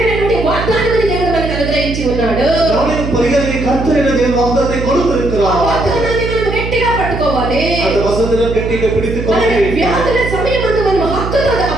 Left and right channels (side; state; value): right; noise; hum, 5 dB below the sound